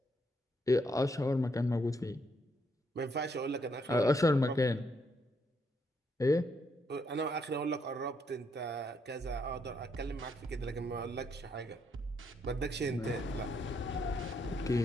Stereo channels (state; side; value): normal; both; correlation 0.75